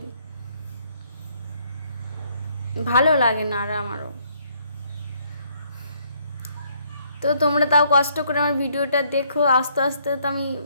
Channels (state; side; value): inverted; both; correlation -0.67